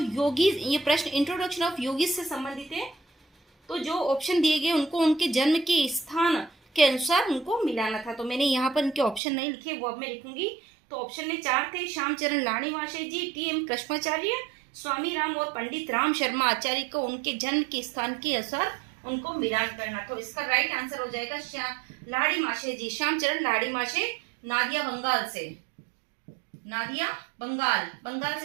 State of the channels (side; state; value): left; drops out; at 9.2 s